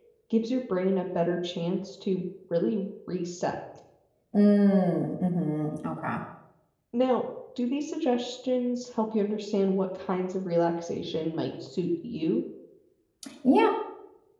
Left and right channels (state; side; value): identical; both; correlation 1.00